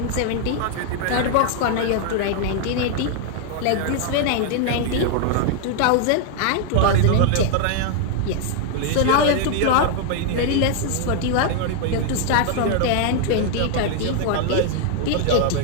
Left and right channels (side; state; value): both; different; correlation 0.00